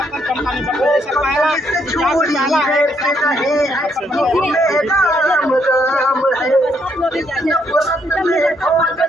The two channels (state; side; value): normal; both; correlation 0.73